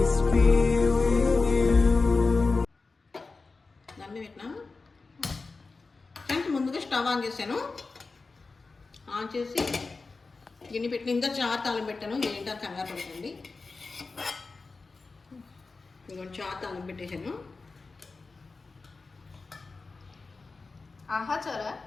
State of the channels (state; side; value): quieter; right; 4.0 dB